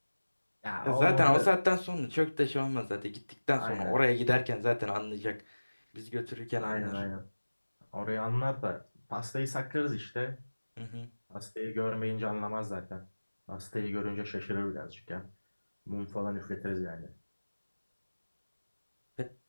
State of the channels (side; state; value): both; inverted; correlation -1.00